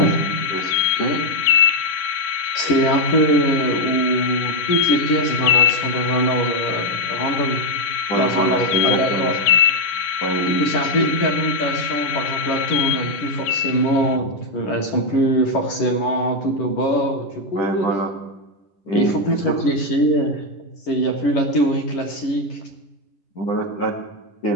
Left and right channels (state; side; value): late; right; 11 ms